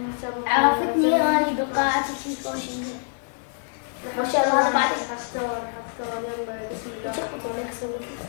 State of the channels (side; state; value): right; silent; 61 dB below the other